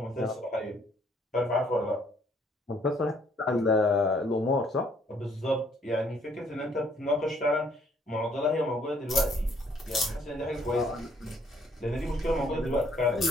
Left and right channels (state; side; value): normal; both; correlation 0.65